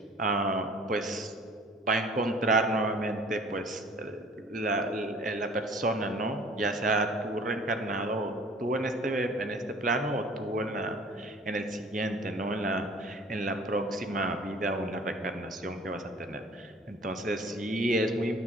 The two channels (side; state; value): both; normal; correlation 0.50